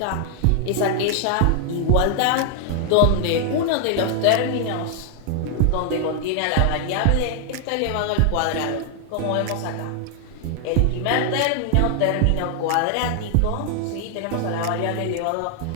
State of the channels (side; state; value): both; different; correlation 0.00